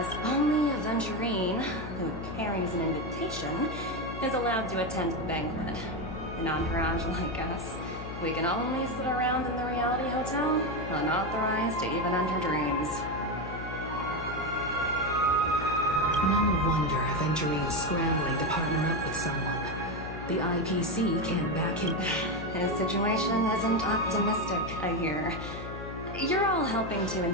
only a Venturine who carries an invitation is allowed to attend the banquet. An entourage like us, we can only sit around in the reality hotel, unauthorized to even enter dreams. No wonder Aventurine's scrambling to partner up with someone. The IPC can't back him. His situation isn't optimistic, I hear. You're all helping to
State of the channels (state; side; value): noise; left; hum, 9 dB below the sound